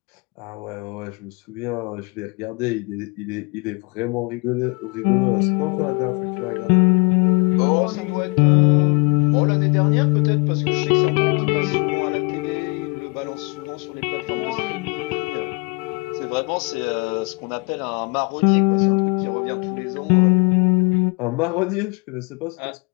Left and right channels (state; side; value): quieter; right; 30.8 dB